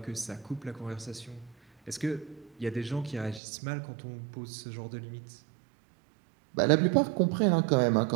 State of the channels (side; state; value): left; drops out; at 3.4 s